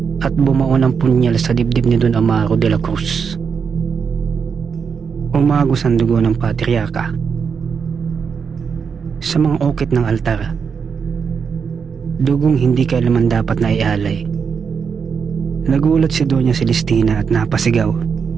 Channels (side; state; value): left; quieter; 6.2 dB